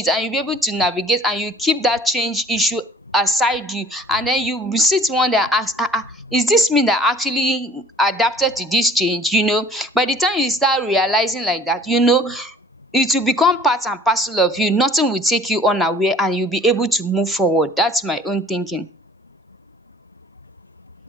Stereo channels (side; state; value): both; normal; correlation 0.51